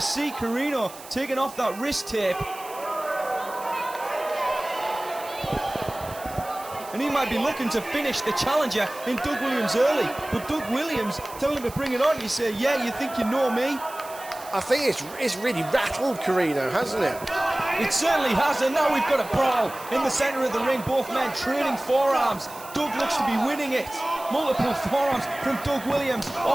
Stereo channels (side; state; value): right; noise; hiss, 17 dB below the sound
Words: Corino taking off that wrist tape. And he might be looking to finish the challenger in Doug Williams early, but Doug Williams telling him to bring it on. You say, yeah, you think you know me? I think it's really rattled Corino, hasn't it? It certainly has, and now we've got a brawl in the centre of the ring, both men trading forearms. Doug looks to be winning it. Multiple forearms from Doug Williams,